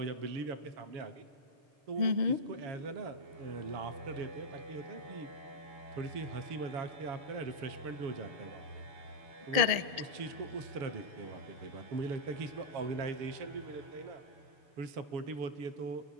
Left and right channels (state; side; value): late; left; 6.7 ms